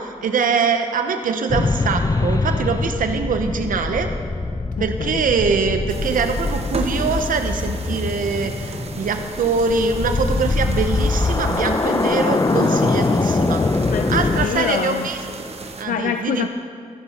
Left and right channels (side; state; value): both; normal; correlation 0.55